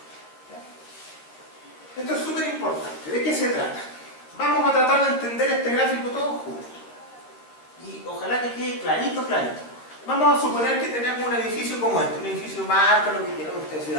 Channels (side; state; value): right; late; 12 ms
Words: Esto es súper importante. ¿De qué se trata? Vamos a tratar de entender este gráfico todos juntos. Y ojalá que quede clarito, clarito. Vamos a suponer que tenemos un edificio como este, un edificio marca, lo que quieran, ustedes se